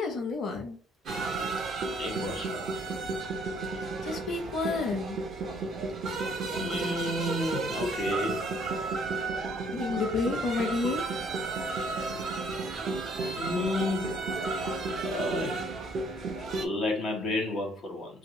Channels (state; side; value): normal; both; correlation 0.63